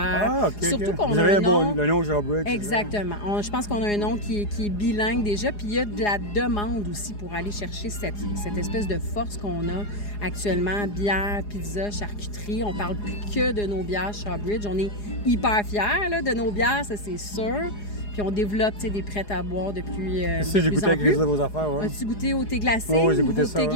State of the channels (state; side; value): late; right; 4.8 ms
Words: Surtout qu'on vous a avez le nom Shawbridge. Exactement. Je pense qu'on a un nom qui est bilingue déjà. Puis il y a de la demande aussi pour aller chercher cette espèce de force qu'on a actuellement. Bière, pizza, charcuterie. On parle plus que de nos bières Shawbridge. On est hyper fiers là, de nos bières, ça c'est sûr. Puis on développe des prêts à boire depuis j'ai goûté avec de vos affaires. Ouais. As-tu goûté au thé glacé? Oui, j'ai goûté ça. Thé